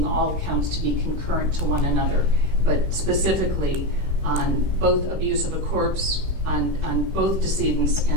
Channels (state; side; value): late; left; 16 ms